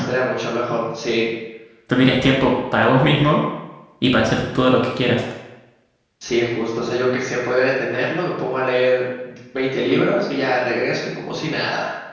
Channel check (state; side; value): identical; both; correlation 1.00